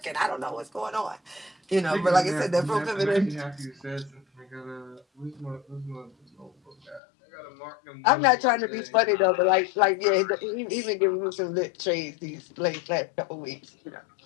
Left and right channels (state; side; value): drops out; right; at 7.0 s